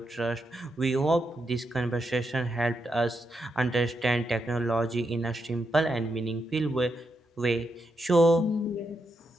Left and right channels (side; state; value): both; normal; correlation 0.83